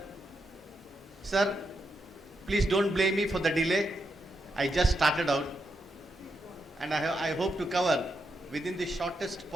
Sir, please don't blame me for the delay. I just started out, and I hope to cover within the shortest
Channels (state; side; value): normal; both; correlation 0.84